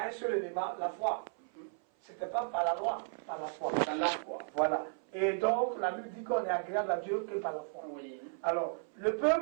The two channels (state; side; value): silent; left; 55 dB below the other